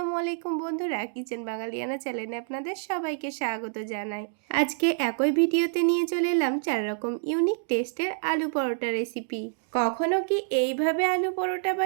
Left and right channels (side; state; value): left; silent; digital silence